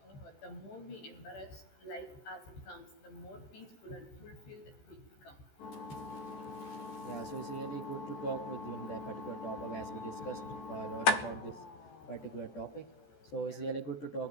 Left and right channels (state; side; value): late; right; 14 ms